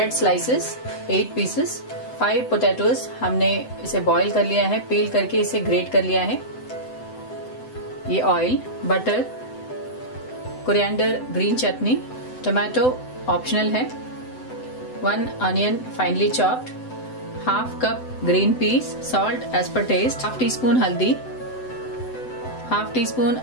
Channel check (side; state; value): right; late; 7.9 ms